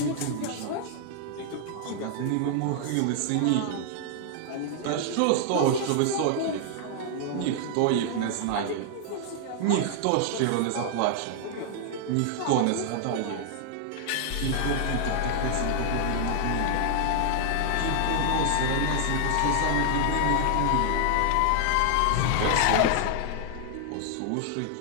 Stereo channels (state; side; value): different; both; correlation 0.00